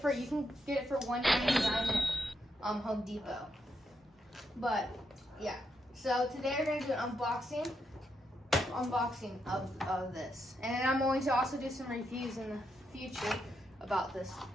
you can get it for $1.99 at Home Depot. But yeah, so today we're gonna do an unboxing of this, and then I'm going to also do some reviews in the future about this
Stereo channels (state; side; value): normal; both; correlation 0.81